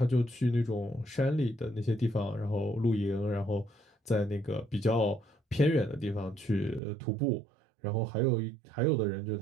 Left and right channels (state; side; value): drops out; left; at 6.8 s